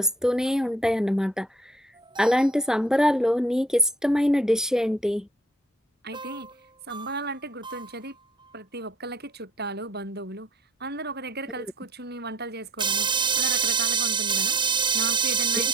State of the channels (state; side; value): normal; both; correlation 0.55